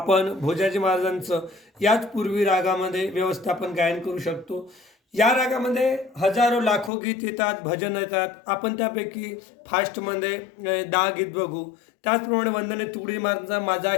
भोजाजी महाराजांचं याच पूर्वी रागामध्ये व्यवस्थापन गायन करू शकतो. या रागामध्ये हजारो लाखो गीत येतात, भजन येतात. आपण त्यापैकी फास्टमध्ये 10 गीत बघू. त्याचप्रमाणे वंदने तुकोजी महाराजांचा माझा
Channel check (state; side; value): drops out; right; at 6.9 s